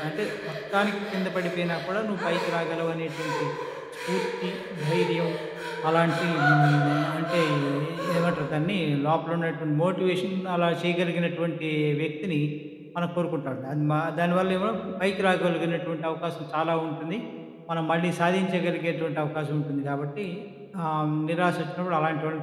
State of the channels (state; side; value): identical; both; correlation 1.00